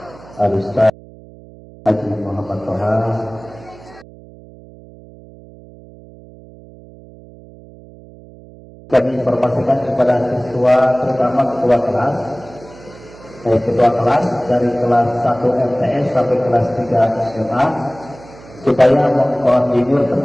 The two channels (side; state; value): right; noise; hum, 21 dB below the sound